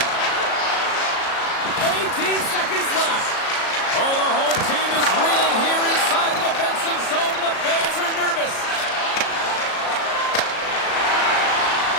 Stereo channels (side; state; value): right; late; 37 ms